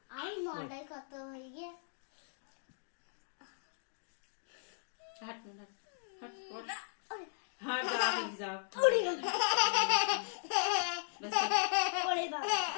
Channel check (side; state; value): right; silent; digital silence